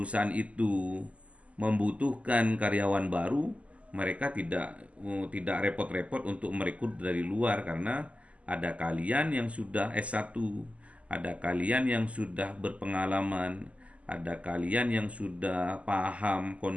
itu membutuhkan karyawan baru, mereka tidak repot-repot untuk merekrut dari luar karena ada kalian yang sudah S1, ada kalian yang sudah berpengalaman, ada kalian yang sudah paham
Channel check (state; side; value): late; left; 0.065 ms